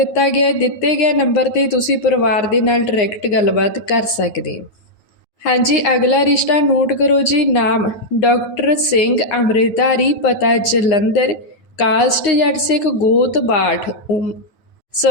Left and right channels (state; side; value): late; right; 9.7 ms